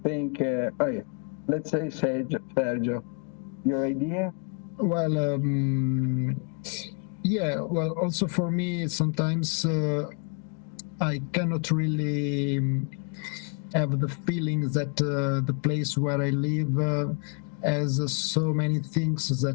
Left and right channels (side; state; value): right; quieter; 35.4 dB